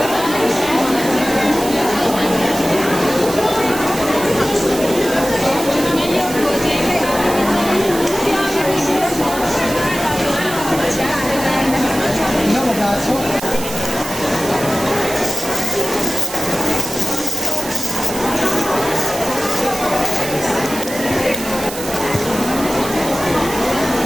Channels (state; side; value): noise; right; hiss, 10 dB below the sound